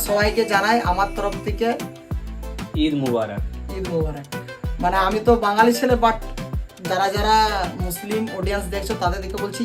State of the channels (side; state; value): both; identical; correlation 1.00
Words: সবাইকে জানাই আমার তরফ থেকে ঈদ মুবারক। ঈদ মুবারক। মানে আমি তো বাঙালি ছেলে, বাট যারা যারা মুসলিম অডিয়েন্স দেখছো তাদের দিকে বলছি